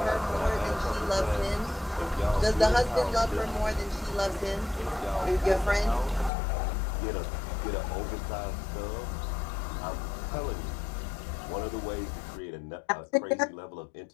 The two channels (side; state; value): right; drops out; at 6.3 s